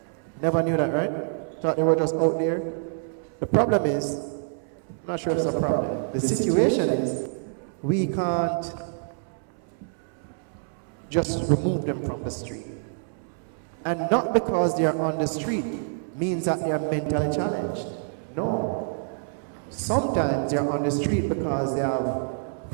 Never knew that, right? Thought they were just out there. The problem is, I'm not sure it's a problem. The situation is, we can't just remove them from the street. And not because they are on the street means that they are mentally challenged. No. Sometimes they are on the street because they have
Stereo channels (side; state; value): left; silent; 60 dB below the other